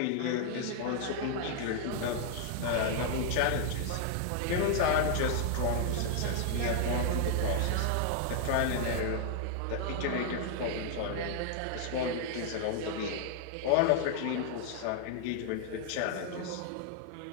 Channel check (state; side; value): different; both; correlation 0.00